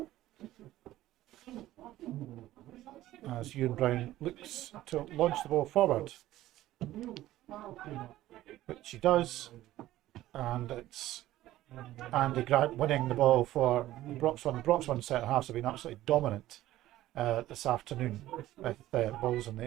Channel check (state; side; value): quieter; left; 14.9 dB